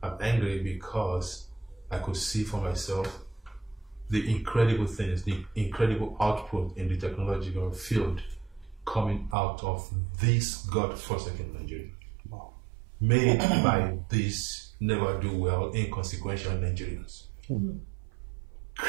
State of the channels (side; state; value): left; drops out; at 9.3 s